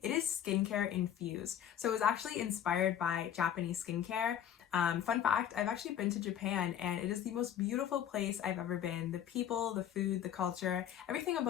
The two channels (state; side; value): quieter; right; 9.9 dB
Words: it is skincare infused. So it was actually inspired by Japanese skincare. Fun fact, I've actually been to Japan and it is the most beautiful place I've ever been. The people, the food, the culture, everything